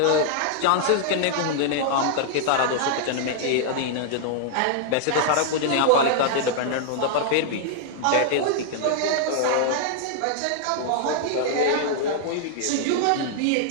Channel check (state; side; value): different; both; correlation -0.01